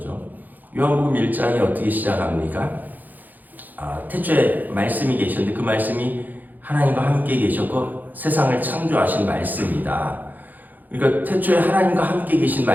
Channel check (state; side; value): late; left; 0.084 ms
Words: 요한복음 1장이 어떻게 시작합니까? 태초에 말씀이 계셨는데 그 말씀이 하나님과 함께 계셨고 세상을 창조하신 말씀이다. 그러니까 태초에 하나님과 함께 계신